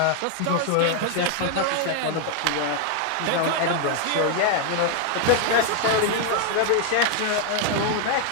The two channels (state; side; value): different; both; correlation 0.00